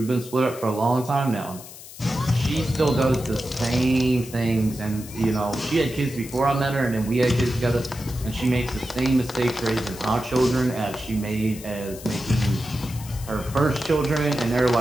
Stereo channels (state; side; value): noise; left; hiss, 16 dB below the sound